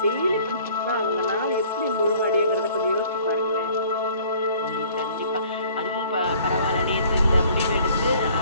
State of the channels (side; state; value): both; inverted; correlation -0.55